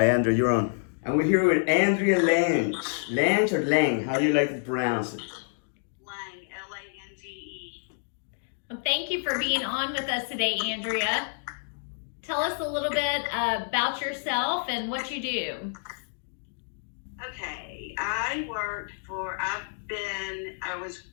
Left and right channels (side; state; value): right; silent; digital silence